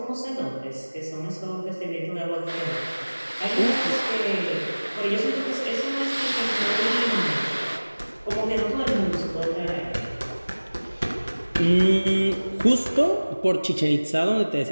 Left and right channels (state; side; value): inverted; both; correlation -1.00